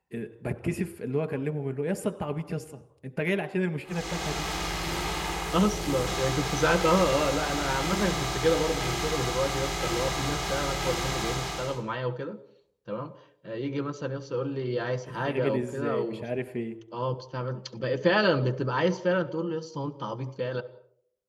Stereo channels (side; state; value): both; identical; correlation 1.00